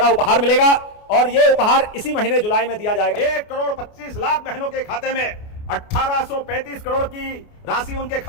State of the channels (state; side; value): late; right; 29 ms